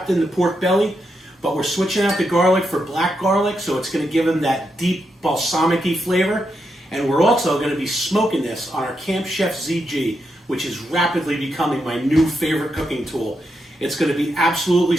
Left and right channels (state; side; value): normal; both; correlation 0.83